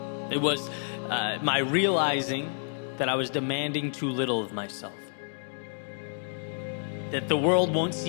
It was my realizing that I was demanding too little of myself. That the world won't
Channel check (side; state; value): right; silent; 58 dB below the other